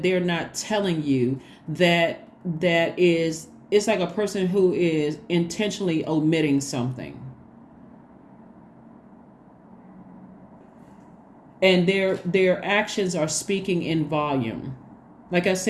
they're not telling you, that is, it's like a person who is intentionally omitting something, and their actions are speaking in volume. Like I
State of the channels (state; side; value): identical; both; correlation 1.00